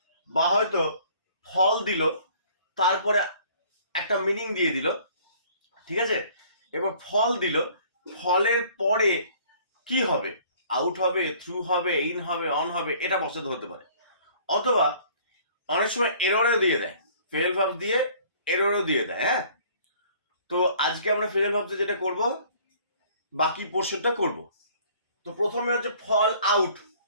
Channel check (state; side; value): inverted; both; correlation -0.54